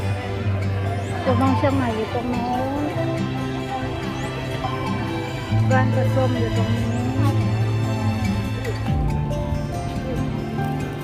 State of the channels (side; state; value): both; identical; correlation 1.00